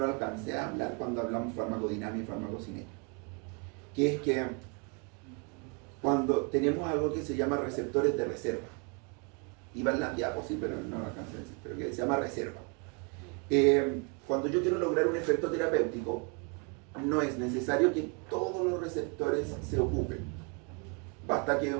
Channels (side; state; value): left; quieter; 34.7 dB